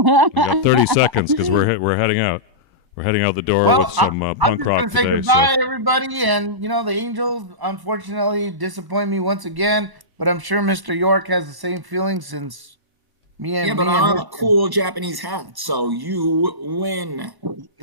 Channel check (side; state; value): left; late; 1.0 ms